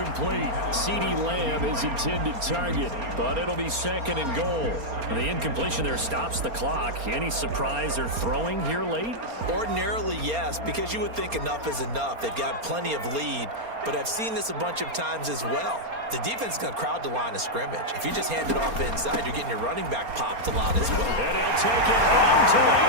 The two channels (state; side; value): late; left; 4.3 ms